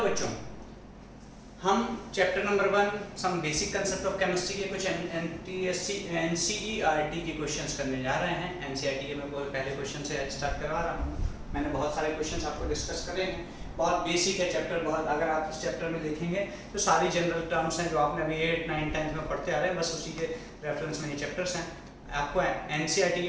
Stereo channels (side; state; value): both; identical; correlation 1.00